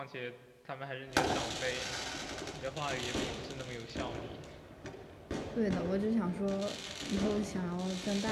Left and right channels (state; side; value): identical; both; correlation 1.00